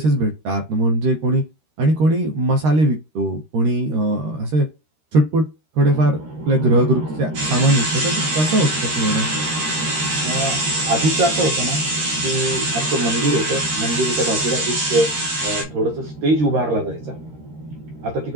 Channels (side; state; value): left; late; 13 ms